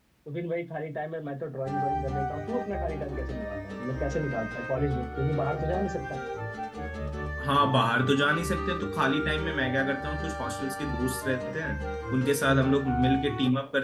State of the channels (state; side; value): identical; both; correlation 1.00